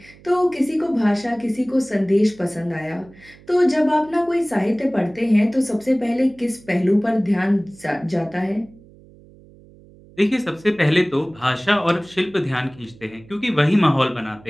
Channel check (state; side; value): noise; right; hum, 24 dB below the sound